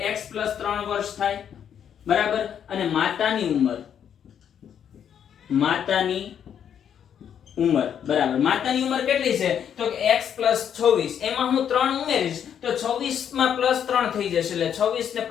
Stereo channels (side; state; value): right; quieter; 8.7 dB